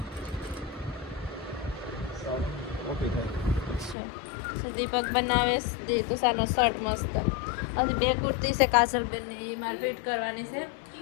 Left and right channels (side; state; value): right; drops out; at 4.0 s